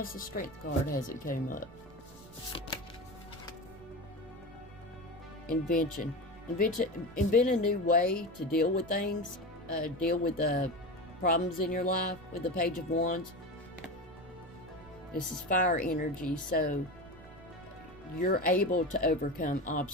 the Strength card hasn't came up. Invention. Invent a new way to deal with things. Deal with the problems in your life with the Page of Wands. This is fire energy, so you're able to overcome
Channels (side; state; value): right; noise; rumble, 22 dB below the sound